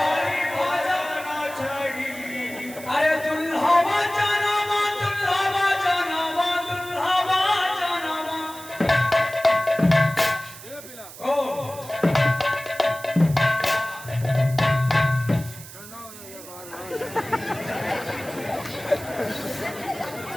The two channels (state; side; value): noise; right; hiss, 16 dB below the sound